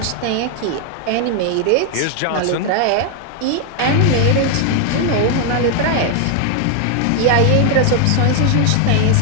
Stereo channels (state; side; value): different; both; correlation 0.00